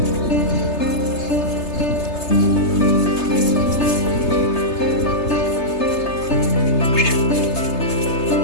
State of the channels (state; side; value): late; right; 3.3 ms